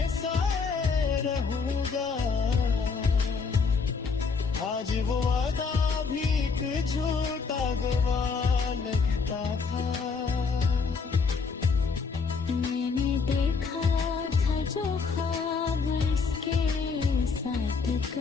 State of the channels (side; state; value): right; quieter; 5.0 dB